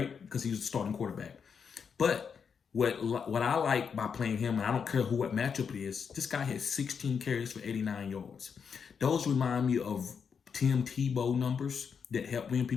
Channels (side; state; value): right; quieter; 6.5 dB